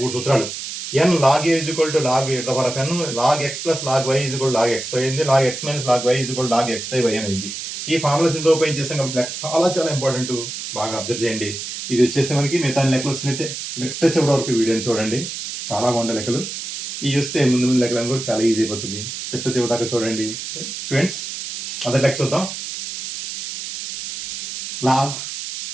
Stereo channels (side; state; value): right; noise; hiss, 7 dB below the sound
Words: సూత్రాలు. n log a is equal to log n, log x plus log y is equal log x y అయింది, log x minus log y is equal log x by y అయింది. ఈ formulas ఇందులో ఉపయోగించేసాం కాబట్టి లెక్క చాలా చాలా ఇంపార్టెంట్. బాగా observe చేయండి. ఇది వచ్చేస్తే మనకి మిగతా లెక్కలు వస్తున్నట్టే. చివరి వరకు వీడియోని చూడండి, చాలా బాగుంటాయి లెక్కలు. ఇవి వస్తే ముందు లెక్కలను కూడా చాలా ఈజీ అయిపోతుంది. చివరి దాకా చూడండి స్టూడెంట్స్. మొదటి లెక్క చూద్దాం. లాగ్